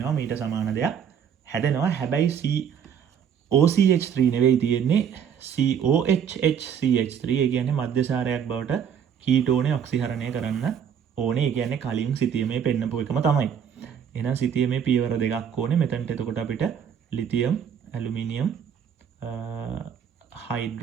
මීට සමාන දෙයක් හැදෙනවා. හැබැයි OCH3 නෙවෙයි තියෙන්නේ COHHCH3. ඒ කියන්නේ මධ්‍යසාරයක් බවට කීටෝනේ ඔක්සිහරණය කරන්න ඕනේ. ඒ කියන්නේ කලින් සිතියමේ පෙන්නපු එකම තමයි. එහෙනම් සිතියමේ පියවර දෙකක් ඕනේ. මෙතනට එතකොට අපිට ලිතියම් ඇලුමිනියම්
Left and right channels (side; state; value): left; quieter; 8.2 dB